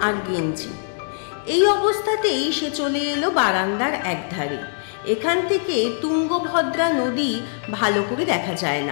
আর গেঞ্জি। এই অবস্থাতেই সে চলে এলো বারান্দার একধারে। এখান থেকে তুঙ্গভদ্রা নদী ভালো করে দেখা যায়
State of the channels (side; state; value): right; silent; 64 dB below the other